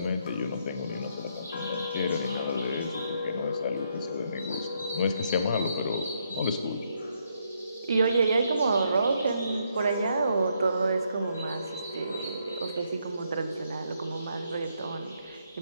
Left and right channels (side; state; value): both; inverted; correlation -0.75